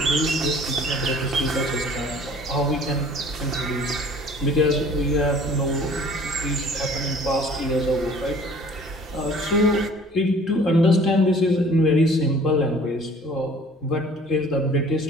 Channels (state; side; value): normal; both; correlation 0.51